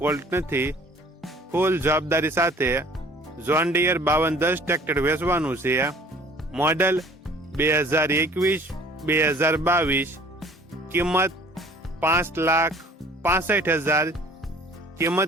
નથી। ફૂલ જવાબદારી સાથે જોન ડીયર 5210 ટ્રેક્ટર વેચવાનું છે। મોડલ 2021-2022, કિંમત 5,65,000,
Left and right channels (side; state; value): both; normal; correlation 0.52